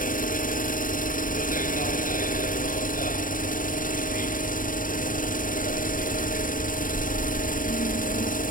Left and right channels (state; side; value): late; right; 0.39 ms